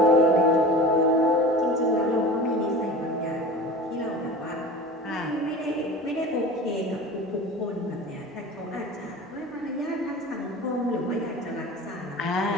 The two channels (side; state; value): both; normal; correlation 0.36